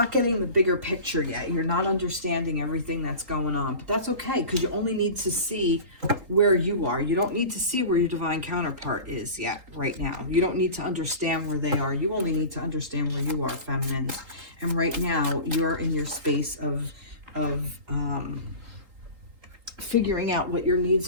getting the bigger picture yet. You're not understanding everything that's going on. But that's okay, because you only need to see where you are. You don't need to see where your divine counterpart is yet, right now. You don't need to understand where they are. You only need to understand where you are, feminines. And right now, you're in your space of figuring out what your needs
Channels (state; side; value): late; left; 3.8 ms